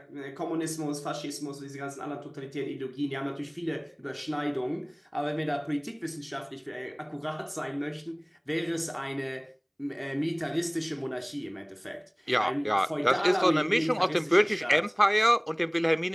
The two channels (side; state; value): both; identical; correlation 1.00